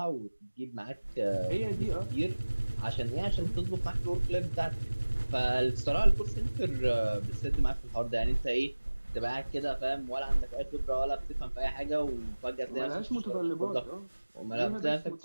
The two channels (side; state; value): both; inverted; correlation -1.00